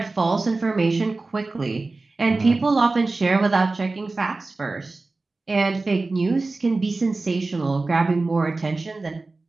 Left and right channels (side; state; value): left; quieter; 3.4 dB